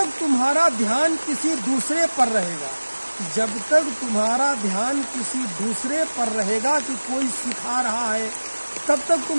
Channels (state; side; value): inverted; both; correlation -1.00